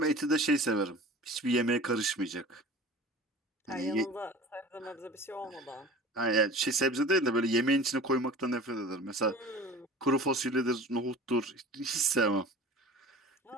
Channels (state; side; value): normal; both; correlation 0.40